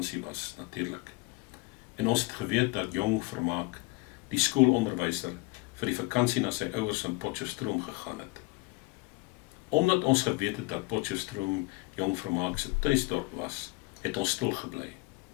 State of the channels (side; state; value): right; quieter; 24.5 dB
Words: was, natuurlik. En ons het geweet dat Jong Vermaak, die skoolonderwyser, vir die vakansie na sy ouers in Potchefstroom gegaan het. Omdat ons geweet het dat Potchefstroom Jong Vermaak se tuisdorp was, het ons stil gebly.